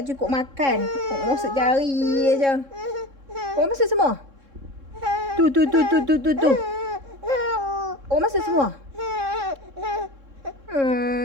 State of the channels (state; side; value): late; left; 3.7 ms